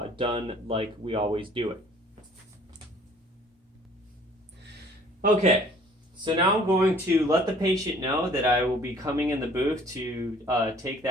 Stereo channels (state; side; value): normal; both; correlation 0.55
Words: done like we always do it. Okay. So now I'm going to let the patient know that I will be coming in the booth to take